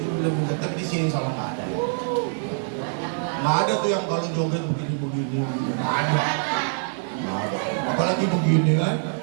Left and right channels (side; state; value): left; silent; digital silence